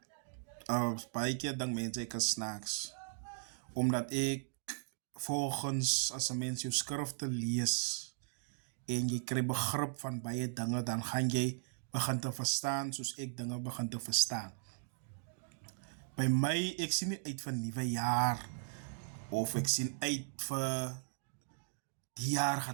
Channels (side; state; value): left; silent; digital silence